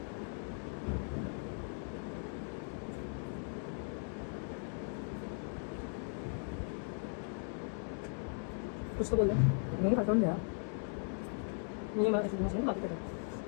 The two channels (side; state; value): right; silent; 52 dB below the other